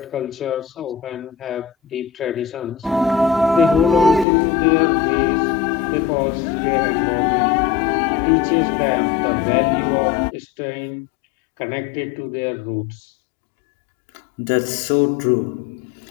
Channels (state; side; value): drops out; right; at 4.2 s